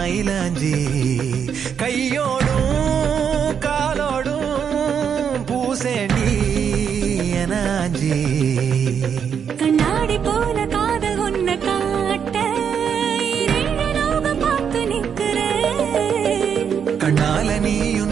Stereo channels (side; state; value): left; quieter; 7.5 dB